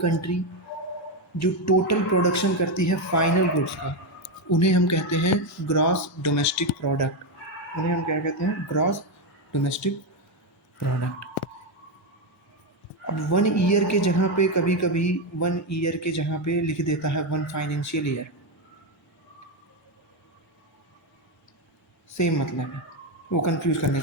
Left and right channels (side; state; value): both; normal; correlation 0.08